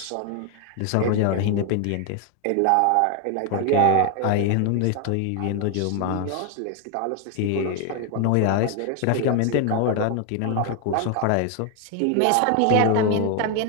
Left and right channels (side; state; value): both; different; correlation 0.01